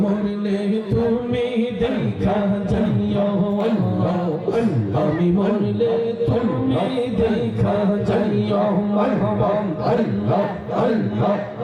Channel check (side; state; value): both; identical; correlation 1.00